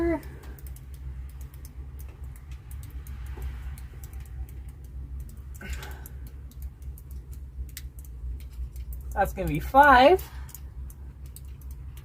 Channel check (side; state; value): both; identical; correlation 1.00